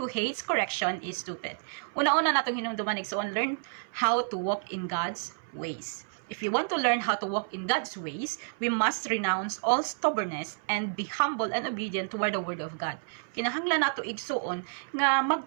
correction is stupid. Una-una natong hinumduman igsoon, learn how to walk in God's ways. If we want to learn how to walk in God's ways, we must renounce all stubbornness and be humble and obedient toward the word of God. Kinahanglan nato igsuon nga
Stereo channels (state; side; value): silent; left; 58 dB below the other